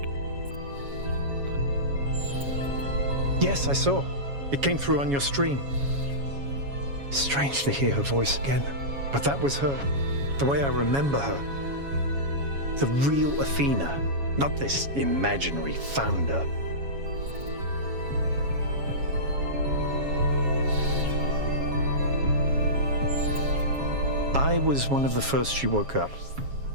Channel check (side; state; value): left; late; 7.2 ms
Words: Yes, I saw. It came through on your stream. Strange to hear her voice again. But that was her. The way I remember her. The real Athena, not this imaginary founder. I was one of the first she woke up.